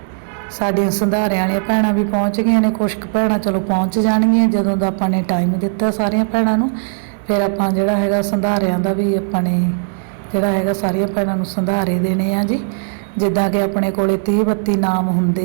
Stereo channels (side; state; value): left; silent; digital silence